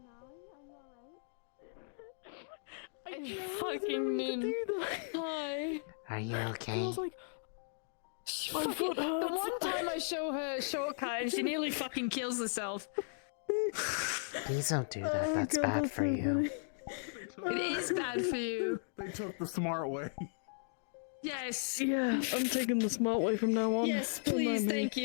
I fucking didn't. Hi. Are you okay? My foot hurts. The one time I show her a shortcut and she nearly fucking kills herself. Please don't do that. That's bad for you. It is bad for you. They took the smart way. Yes. Yeah, I'm taking the smart way from now on. Yes, Don't please, mind me. thank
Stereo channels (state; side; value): silent; right; digital silence